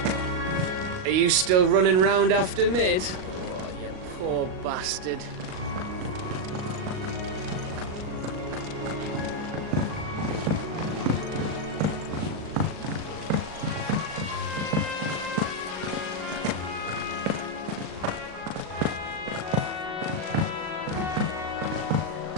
Are you still running round after Mid? Oh, you poor bastard.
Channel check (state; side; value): late; left; 38 ms